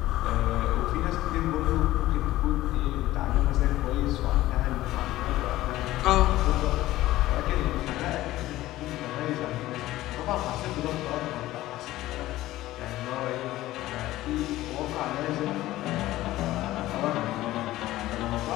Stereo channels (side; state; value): right; quieter; 15.9 dB